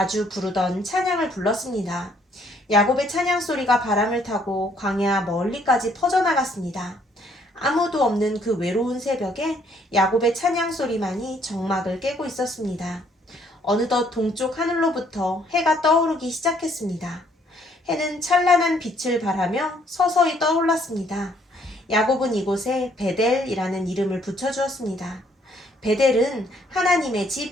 부르던 찬양을 불렀습니다. 야곱의 찬양 소리가 바람을 타고 광야 멀리까지 퍼져나갔습니다. 아무도 없는 그 외로운 새벽에 야곱의 찬양 소리만이 정막을 깨고 있었습니다. 어느덧 동쪽 하늘로부터 해가 떠오르기 시작했습니다. 해는 찬란한 빛을 발하며 서서히 떠올랐습니다. 야곱은 이곳에 베델이라는 이름을 붙여주었습니다. 베델은 하나님의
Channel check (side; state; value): both; normal; correlation 0.66